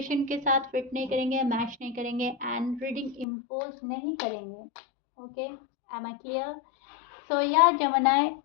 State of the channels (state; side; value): drops out; right; at 3.2 s